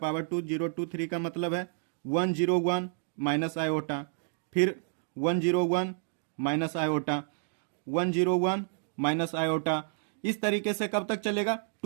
2023 का मतलब है 101 माइनस आयोटा, फिर 101 माइनस आयोटा, 101 माइनस आयोटा। इस तरीके से कब तक चलेगा,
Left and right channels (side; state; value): left; silent; digital silence